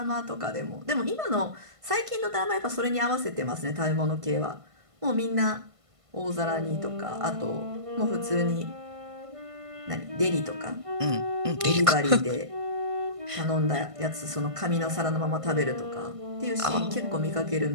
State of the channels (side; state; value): left; late; 1.5 ms